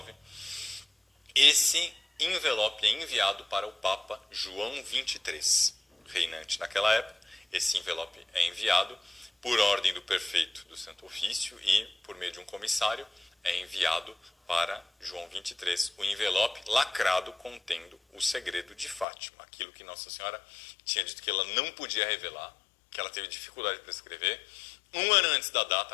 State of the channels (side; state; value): right; drops out; at 19.1 s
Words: esse envelope é enviado para o Papa João XXIII, reinante naquela época. Esse envelope é enviado por ordem do prefeito do Santo Ofício e, por meio de um comissário, é enviado para João XXIII, o envelope lacrado contendo o segredo de Fátima, aquilo que Nossa Senhora tinha dito que ela não podia revelar, que ela teve dificuldade para escrever. 1 ano antes da data